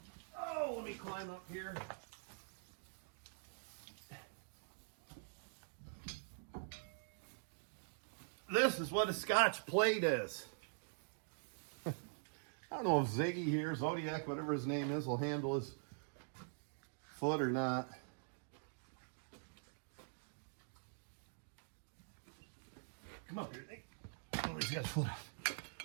Oh, let me climb up here. This is what a Scotch Plate is. I don't know if Ziggy here, Zodiac, whatever his name is, will handle his foot or not. Come up here, Nick. Oh, he's got his foot off.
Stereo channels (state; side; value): silent; left; digital silence